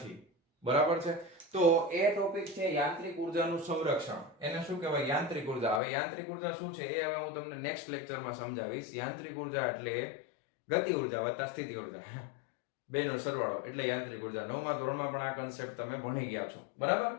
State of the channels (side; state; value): right; drops out; at 5.8 s